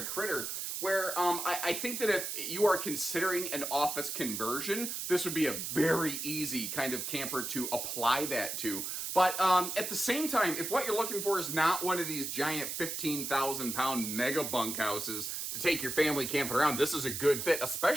critter where I think that if you are considering an office conversion, this would be a very easy kind of camper to apply that to. But at the same time, if what you're looking for is not one of these giant 15,000 pound mega bunkhouses to take your family camping around, this is a good fit,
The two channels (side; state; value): right; noise; hiss, 4 dB below the sound